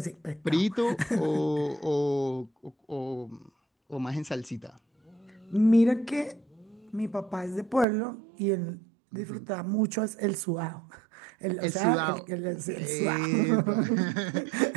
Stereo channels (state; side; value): drops out; left; at 7.9 s